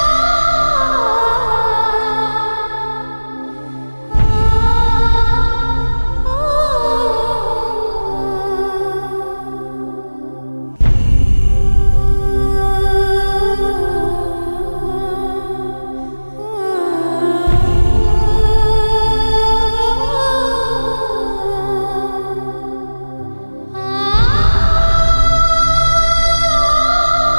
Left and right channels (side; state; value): both; inverted; correlation -1.00